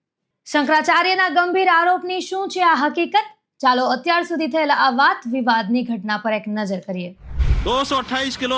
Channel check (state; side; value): identical; both; correlation 1.00